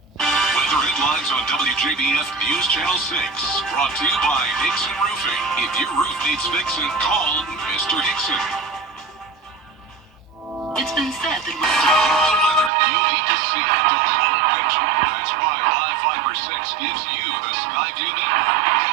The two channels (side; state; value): left; drops out; at 12.7 s